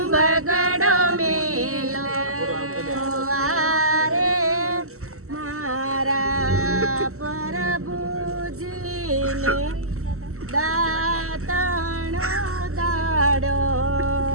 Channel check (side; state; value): left; late; 0.63 ms